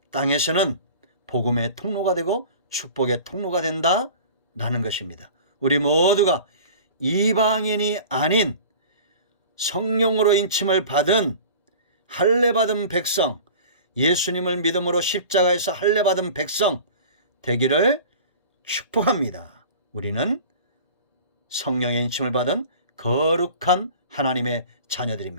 땅에서는 복음의 통로가 되고 축복의 통로가 된다라는 것입니다. 우리 모두가 이방인이 아닌 성령으로 인침을 받은 할례받은 백성, 예수님을 믿음으로 십자가에서 할례받은 백성 되기를 축복합니다. 우리는 성령의 인침을 받은 거룩한 하나님의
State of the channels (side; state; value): both; inverted; correlation -0.40